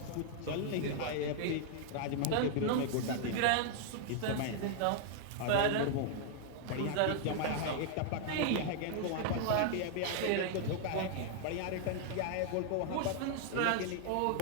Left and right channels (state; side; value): different; both; correlation -0.01